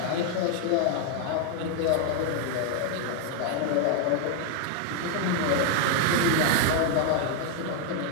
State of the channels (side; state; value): both; different; correlation 0.00